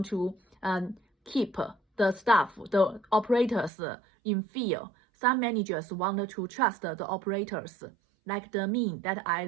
to keep the staff, the operators in fear. Some managers want to trust the operators, like the me that I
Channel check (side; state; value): left; drops out; at 3.7 s